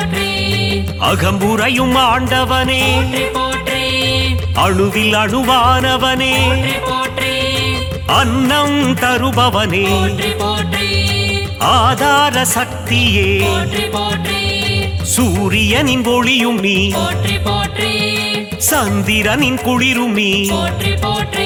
அகம்புரையும் ஆண்டவனே போற்றி போற்றி அணுவில் அணுவானவனே போற்றி போற்றி அன்னம் தருபவனே போற்றி போற்றி ஆதார சக்தியே போற்றி போற்றி சூரியனின் ஒளியும் நீ போற்றி போற்றி சந்திரனின் குளிரும் நீ போற்றி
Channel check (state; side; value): identical; both; correlation 1.00